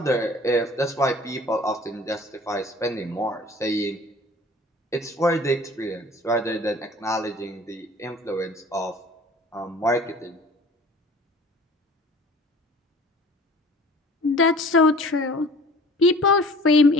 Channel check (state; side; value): normal; both; correlation 0.47